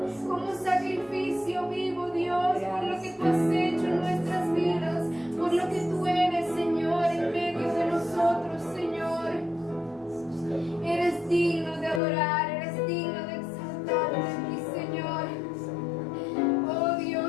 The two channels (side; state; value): right; drops out; at 12.0 s